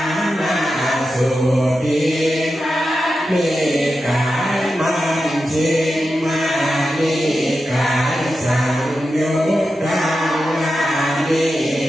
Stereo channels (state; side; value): normal; both; correlation 0.90